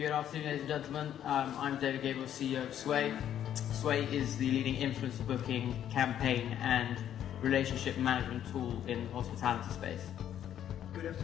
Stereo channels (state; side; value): quieter; right; 10.4 dB